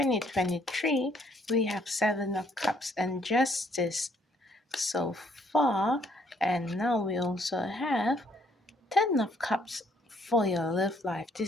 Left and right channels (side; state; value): both; normal; correlation 0.67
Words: we have Seven of Cups and Justice so far, and now we also have Ten of Cups for your love life.